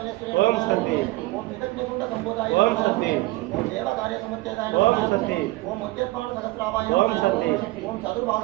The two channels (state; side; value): quieter; left; 19.9 dB